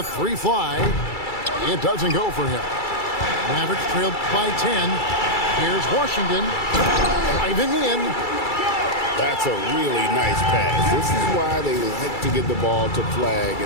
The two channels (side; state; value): right; late; 2.3 ms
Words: 3 fly. It doesn't go for him. Mavericks trailed by 10. Here's Washington driving in. That's a really nice pass. This is why they like to get the ball to Flagg